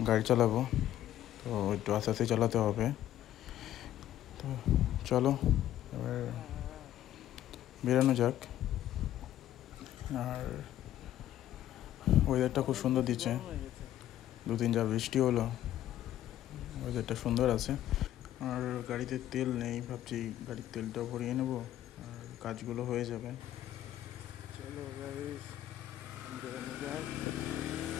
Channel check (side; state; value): right; quieter; 12.5 dB